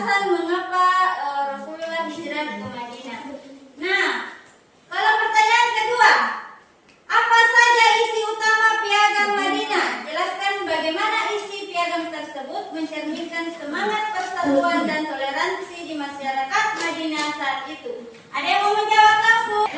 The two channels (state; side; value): identical; both; correlation 1.00